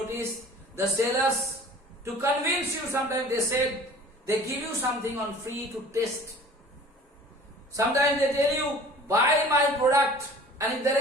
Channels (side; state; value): both; normal; correlation 0.46